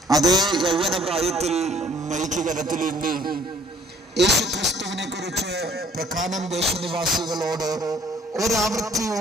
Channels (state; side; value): normal; both; correlation 0.58